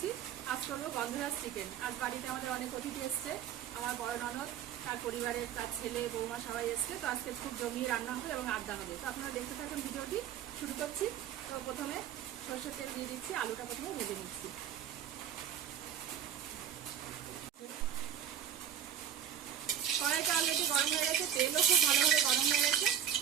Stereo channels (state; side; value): quieter; left; 9.6 dB